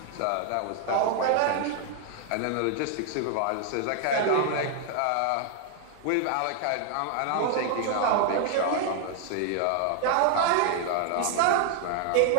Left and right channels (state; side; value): different; both; correlation 0.00